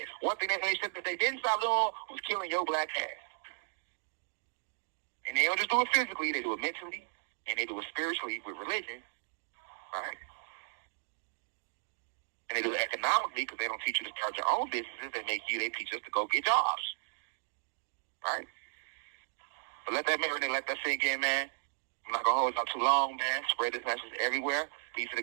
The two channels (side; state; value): left; silent; digital silence